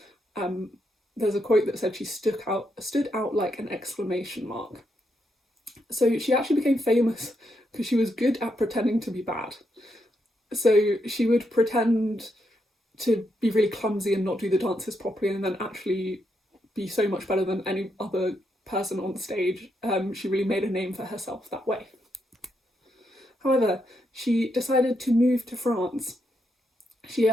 There's a quote that said she stood out like an exclamation mark. So she actually became famous because she was good at pretending to be bad. So she would pretend to be really clumsy and not do the dances properly, and then actually be so much better than any other person on stage. She really made a name for herself that way. However, she decided to move to France. She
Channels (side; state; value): both; normal; correlation 0.80